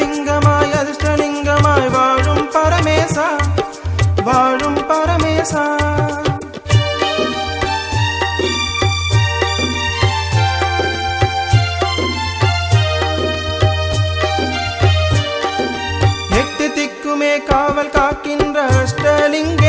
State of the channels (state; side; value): identical; both; correlation 1.00